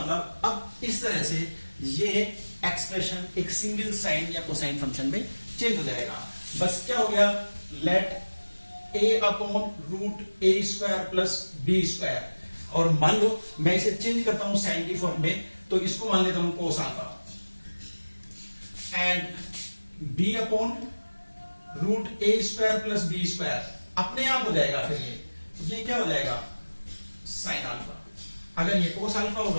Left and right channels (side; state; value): both; inverted; correlation -1.00